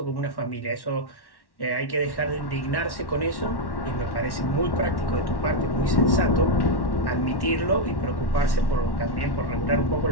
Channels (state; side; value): late; right; 1.1 ms